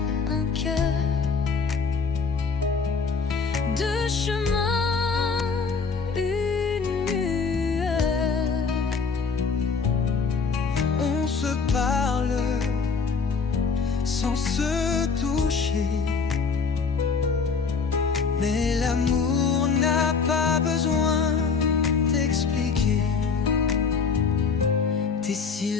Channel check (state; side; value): quieter; right; 5.1 dB